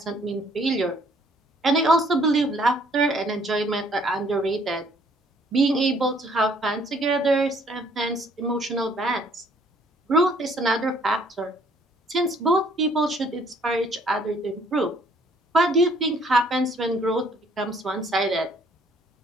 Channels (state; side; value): normal; both; correlation 0.62